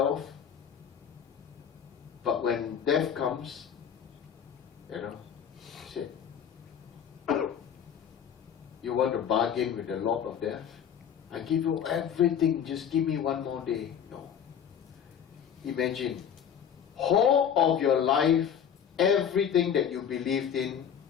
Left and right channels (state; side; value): quieter; right; 8.3 dB